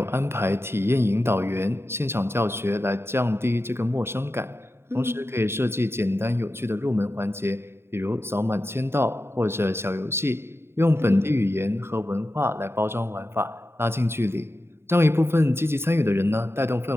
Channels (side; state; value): left; late; 0.12 ms